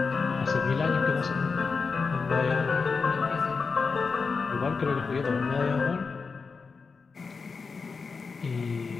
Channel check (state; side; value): quieter; right; 4.8 dB